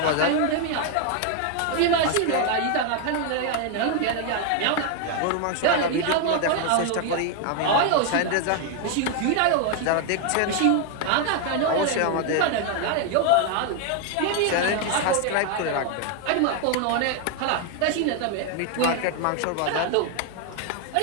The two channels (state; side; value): different; both; correlation 0.01